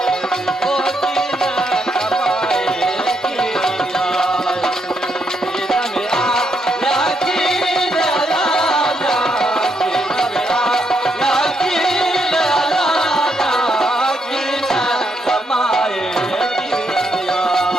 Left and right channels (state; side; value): normal; both; correlation 0.78